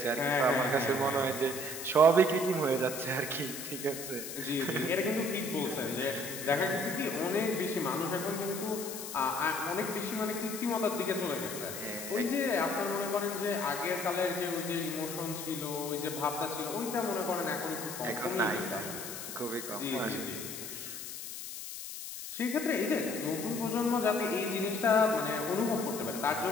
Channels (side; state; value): left; noise; hiss, 8 dB below the sound